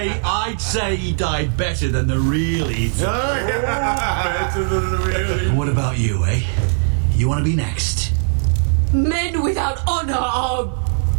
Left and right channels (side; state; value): left; silent; 66 dB below the other